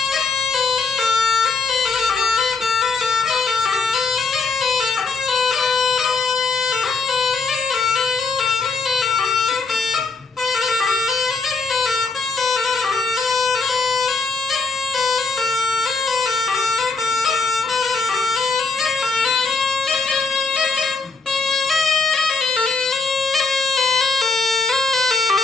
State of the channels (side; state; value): right; quieter; 4.4 dB